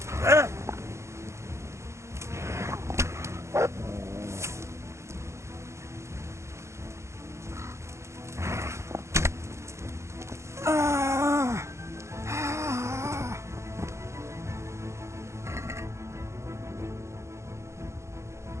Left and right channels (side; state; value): left; late; 0.14 ms